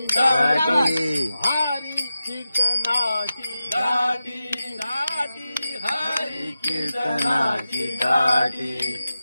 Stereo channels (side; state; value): both; inverted; correlation -0.93